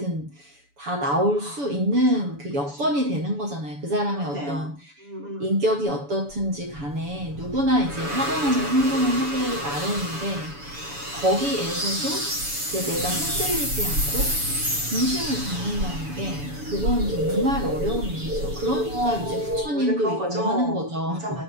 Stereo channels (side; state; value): left; late; 7.0 ms